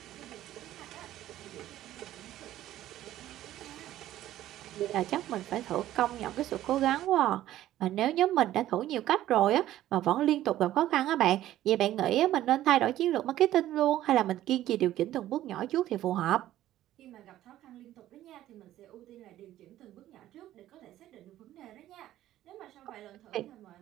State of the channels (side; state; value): left; quieter; 13.6 dB